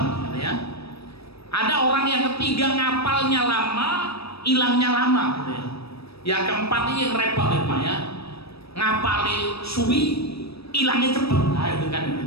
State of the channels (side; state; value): right; late; 0.77 ms